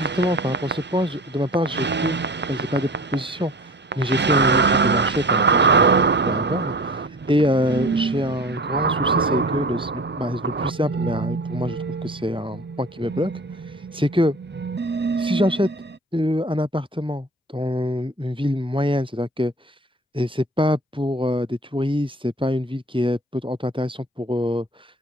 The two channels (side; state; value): both; normal; correlation 0.40